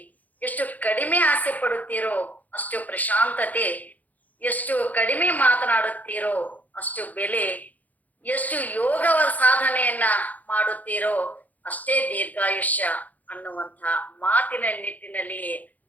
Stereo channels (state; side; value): late; right; 0.079 ms